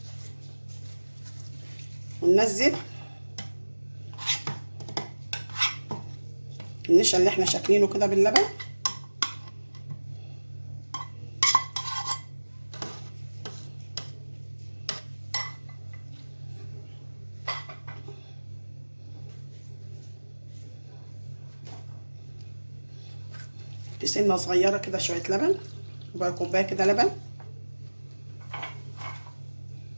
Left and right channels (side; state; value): both; inverted; correlation -1.00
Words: وننزل النشا اللي احنا شاكلينه كده باللبن. سنه صغيره كده شويه لبن، ربع كوبايه كده لبن.